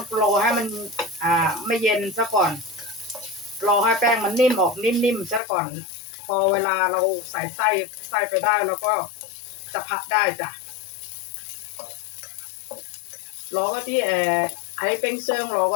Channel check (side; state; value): right; drops out; at 5.4 s